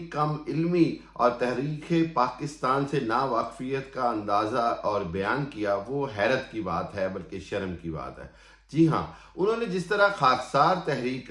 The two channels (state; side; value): identical; both; correlation 1.00